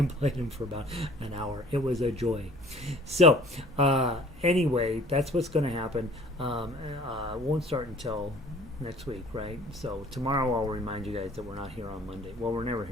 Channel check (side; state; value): both; normal; correlation 0.51